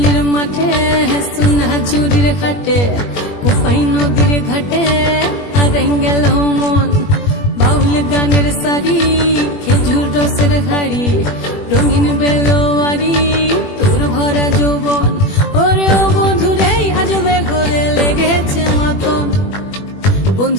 মাঠে সোনা ঝুড়ির হাটে কোপাই নদীর ঘাটে হারাই গেল মন বাউল গানের সারি খেজুর রসের হাড়ি রঙিন বেলোয়ারি তোর ভরা যৌবন ওরে ও বন্ধুরে আজবে ঘরে লেগেছে মাতন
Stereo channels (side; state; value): right; late; 21 ms